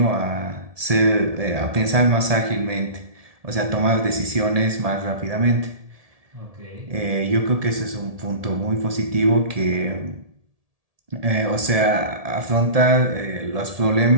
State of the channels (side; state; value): left; late; 1.7 ms